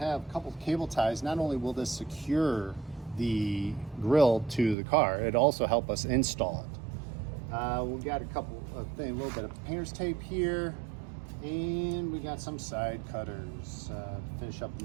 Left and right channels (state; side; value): drops out; left; at 4.8 s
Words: a couple of cable ties. Not only will this secure the grill to the car, it also help us install it. We got a couple of things, a little bit of painter's tape here, and we got some side cutters to finish up